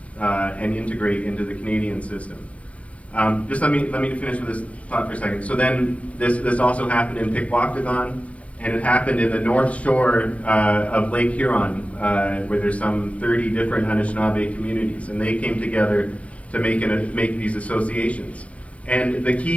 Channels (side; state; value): right; late; 0.064 ms